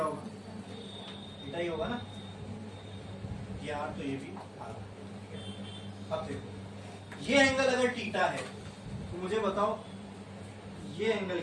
होगा, थीटा ही होगा ना। ये आर तो ये भी आर। अब देखो, ये एंगल अगर थीटा है तो मुझे बताओ ये एंगल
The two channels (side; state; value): both; identical; correlation 1.00